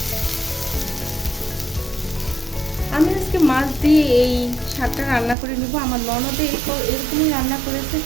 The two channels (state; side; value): drops out; left; at 5.4 s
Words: আমি আজকে মাছ দিয়ে এই শাকটা রান্না করে নিব। আমার ননদে এরকমই রান্না করেছে,